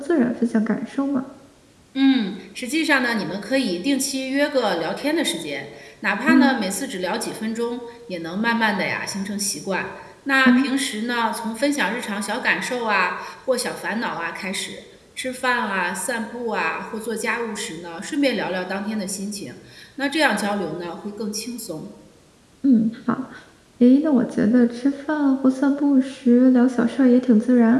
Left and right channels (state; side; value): identical; both; correlation 1.00